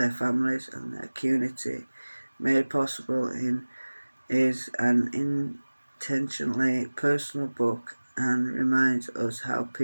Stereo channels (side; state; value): both; inverted; correlation -1.00